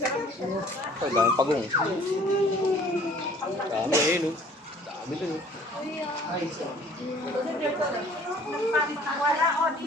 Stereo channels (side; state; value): both; normal; correlation 0.53